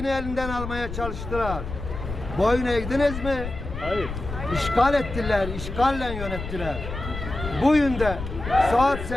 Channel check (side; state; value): left; noise; rumble, 8 dB below the sound